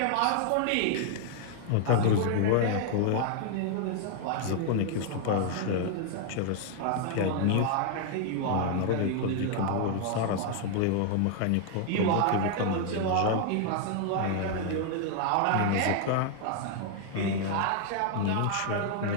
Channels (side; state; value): both; different; correlation 0.00